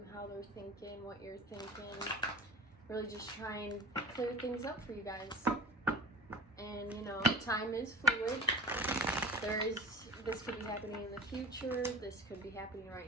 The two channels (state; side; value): normal; both; correlation 0.39